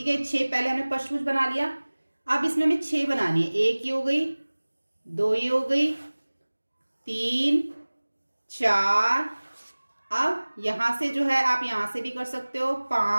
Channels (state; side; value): inverted; both; correlation -1.00